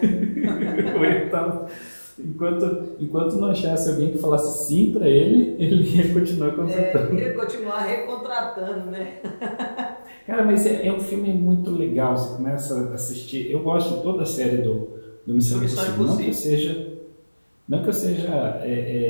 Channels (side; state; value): both; inverted; correlation -1.00